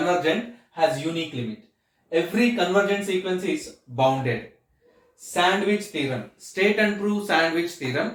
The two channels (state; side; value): identical; both; correlation 1.00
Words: has unique limit. Every convergent sequence is bounded. Sandwich theorem. State and prove sandwich